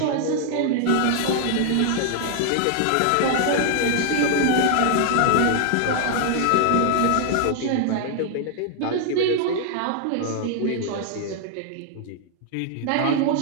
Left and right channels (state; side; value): different; both; correlation 0.00